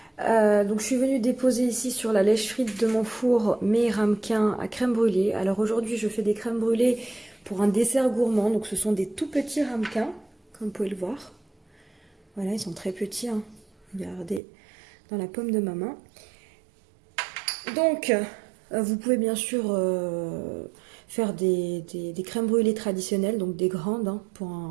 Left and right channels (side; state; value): left; drops out; at 14.4 s